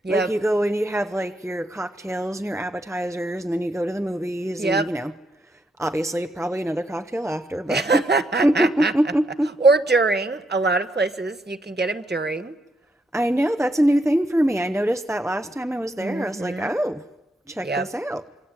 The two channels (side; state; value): both; normal; correlation 0.78